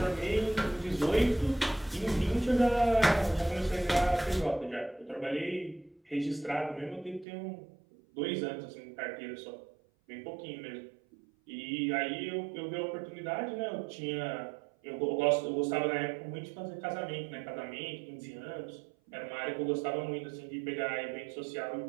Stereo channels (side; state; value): left; drops out; at 7.2 s